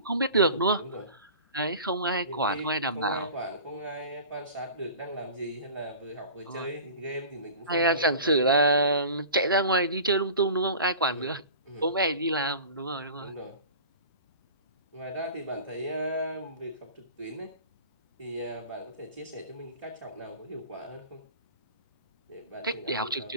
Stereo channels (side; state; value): both; inverted; correlation -0.39